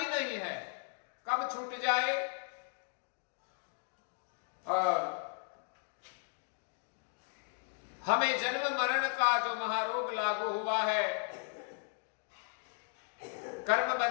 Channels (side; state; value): right; silent; 54 dB below the other